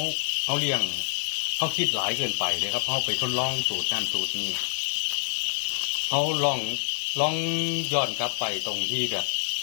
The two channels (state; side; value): silent; right; 58 dB below the other